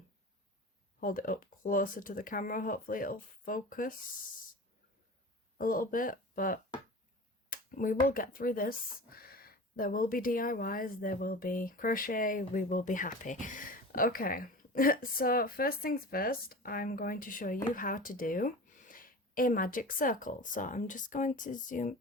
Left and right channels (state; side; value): normal; both; correlation 0.34